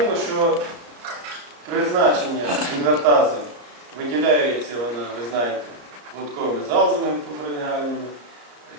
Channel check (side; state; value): left; late; 33 ms